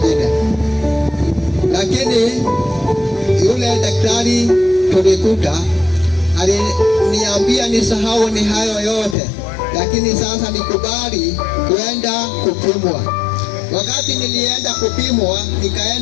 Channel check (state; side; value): drops out; right; at 9.2 s